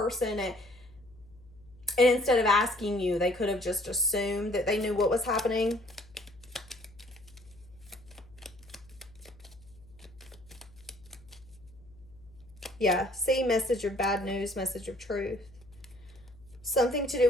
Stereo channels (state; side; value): noise; left; hum, 24 dB below the sound